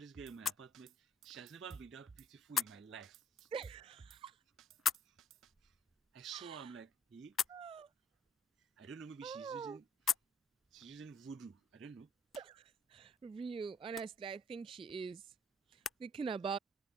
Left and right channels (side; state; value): both; normal; correlation 0.62